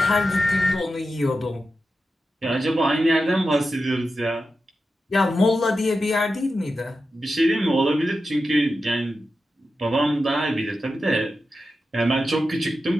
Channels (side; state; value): both; normal; correlation 0.90